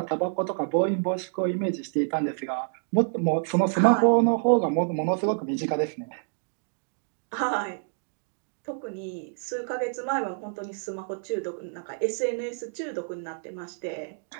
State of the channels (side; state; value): left; silent; digital silence